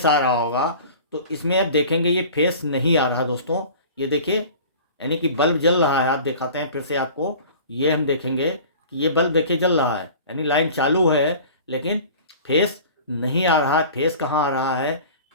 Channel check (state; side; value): inverted; both; correlation -0.42